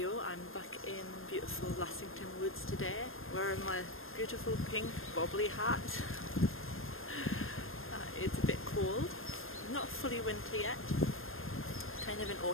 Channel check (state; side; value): late; right; 0.60 ms